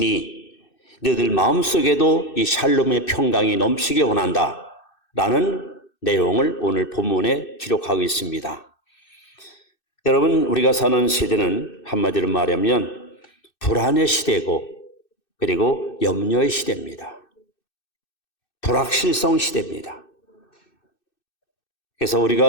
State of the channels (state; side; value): late; right; 2.6 ms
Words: 너희들 마음속에도 이 샬롬의 평강이 넘치게 원한다 라는 내용을 오늘 본문에 기록하고 있습니다. 여러분, 우리가 사는 시대는 한마디로 말하면 불안의 시대고 그리고 염려의 시대입니다. 불확실성 시대입니다. 그래서